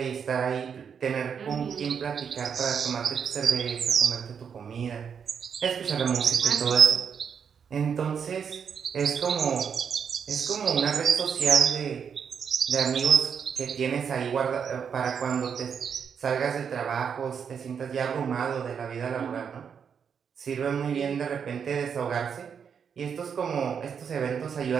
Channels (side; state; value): left; quieter; 7.1 dB